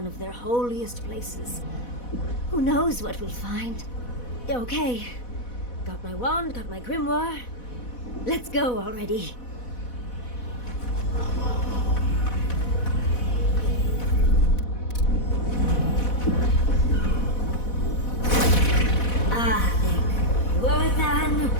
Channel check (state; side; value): late; right; 4.1 ms